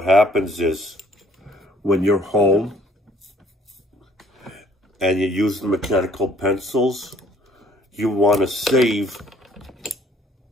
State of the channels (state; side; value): normal; both; correlation 0.59